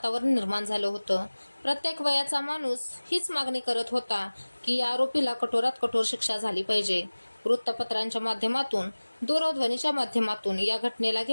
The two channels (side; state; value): both; inverted; correlation -1.00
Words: निर्माण झालं होतं. प्रत्येक वयाचा माणूस हीच मागणी करत होता की या आरोपीला कठोरात कठोर शिक्षा झाली पाहिजे. वृत्तपत्रांच्या माध्यमातून, दूरध्वनीच्या माध्यमातून या घटनेला